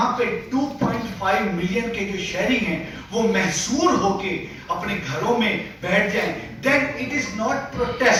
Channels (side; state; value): both; identical; correlation 1.00